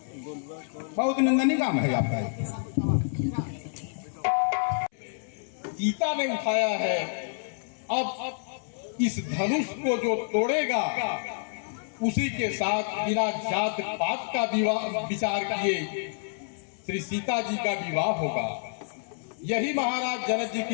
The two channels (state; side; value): silent; right; 59 dB below the other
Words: बहुत निंदनीय काम है आपका। सीता ने उठाया है, अब इस धनुष को जो तोड़ेगा उसी के साथ बिना जात पात का विचार किए श्री सीता जी का विवाह होगा। यही महाराज जनक जी